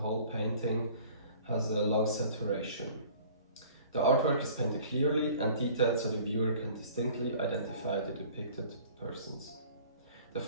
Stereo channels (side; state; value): both; inverted; correlation -0.49